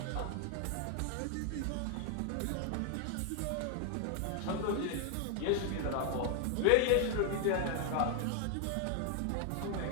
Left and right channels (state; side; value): different; both; correlation 0.00